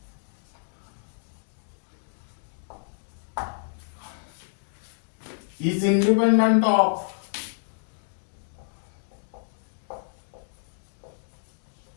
is independent of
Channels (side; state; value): right; silent; digital silence